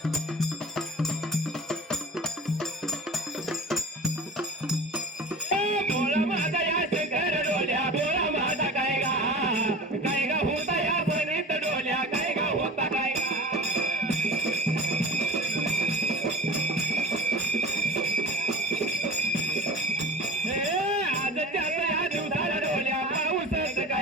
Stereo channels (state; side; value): normal; both; correlation 0.37